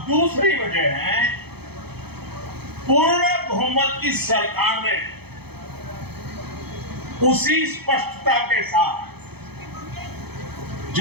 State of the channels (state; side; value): late; left; 0.97 ms